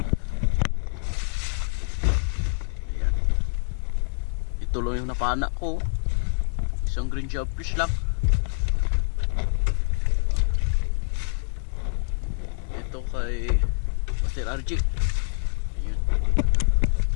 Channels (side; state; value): right; silent; digital silence